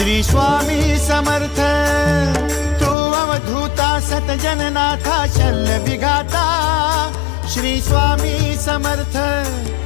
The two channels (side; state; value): right; drops out; at 3.0 s